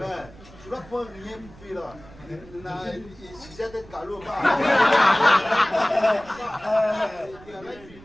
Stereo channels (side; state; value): right; noise; rumble, 21 dB below the sound